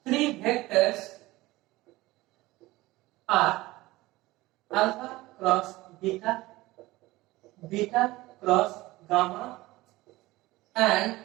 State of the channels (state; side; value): quieter; left; 19.1 dB